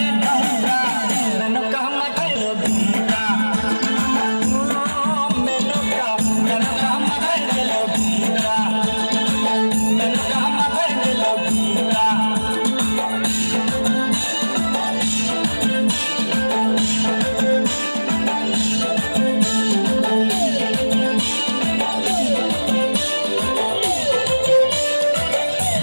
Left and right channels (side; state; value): both; inverted; correlation -1.00